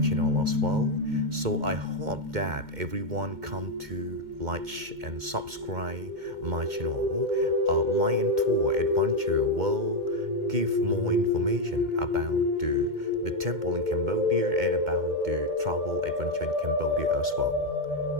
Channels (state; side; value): late; left; 2.1 ms